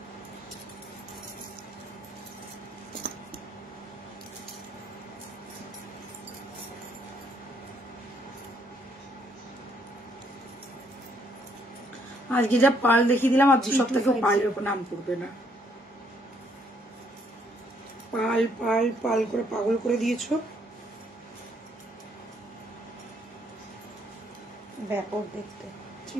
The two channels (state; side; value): normal; both; correlation 0.70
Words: আজকে যা পাল দেখিয়ে দিলাম, আর 2 সপ্তাহে পালের উপর নাম করবে না। পাল পাল পাল করে পাগল করে দিয়েছো। ব্যাপক দেখতে